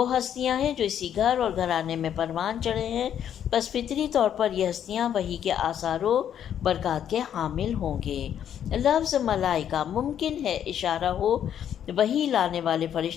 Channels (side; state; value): right; quieter; 9.6 dB